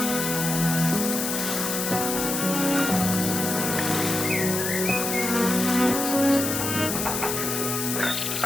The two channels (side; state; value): left; noise; hiss, 2 dB below the sound